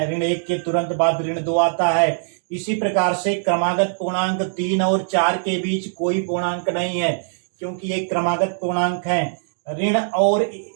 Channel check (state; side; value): silent; left; digital silence